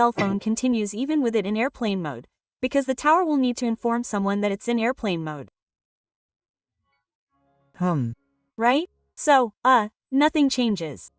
phone continues even with it in airplane mode, because the tower will need to inform someone that it's in airplane mode. Right? So, nothing changes.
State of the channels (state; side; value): identical; both; correlation 1.00